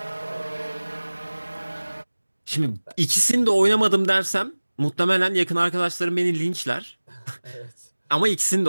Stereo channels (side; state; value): both; inverted; correlation -1.00